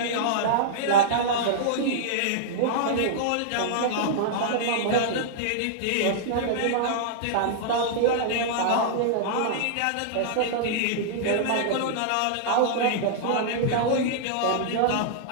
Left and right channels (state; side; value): different; both; correlation -0.02